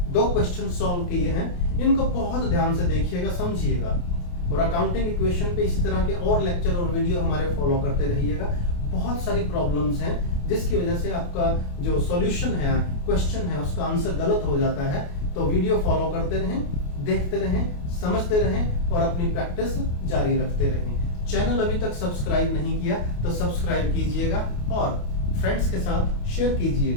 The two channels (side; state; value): right; late; 28 ms